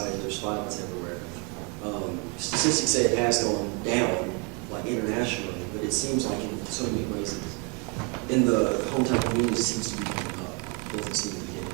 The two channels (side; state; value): left; quieter; 33.0 dB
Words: there's violence everywhere. Statistics say it has gone down, like internationally, but it seems like in so many ways, in the hometown community, it seems to be going up. It doesn't seem to be getting